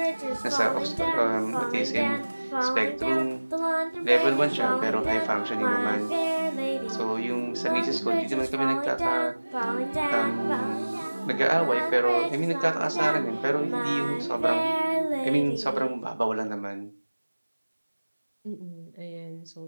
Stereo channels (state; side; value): inverted; both; correlation -1.00